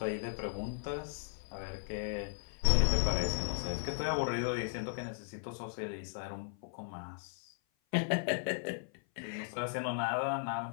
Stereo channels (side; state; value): right; silent; 53 dB below the other